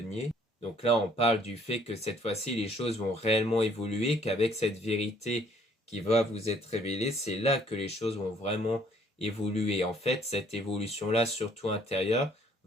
Donc là, on parle du fait que cette fois-ci, les choses vont réellement évoluer, qu'avec cette vérité qui va vous être révélée, c'est là que les choses vont vraiment évoluer. En fait, cette évolution-là, surtout intérieure,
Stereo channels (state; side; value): normal; both; correlation 0.61